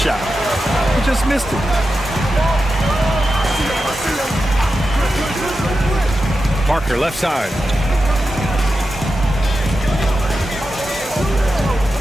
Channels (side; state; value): both; normal; correlation 0.90